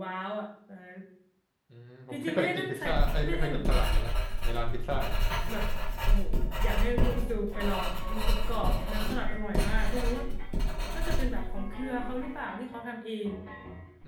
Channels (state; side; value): identical; both; correlation 1.00